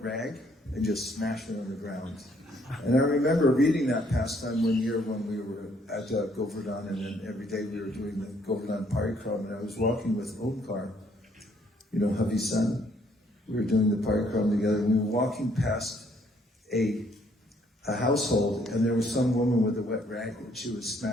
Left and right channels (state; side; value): normal; both; correlation 0.66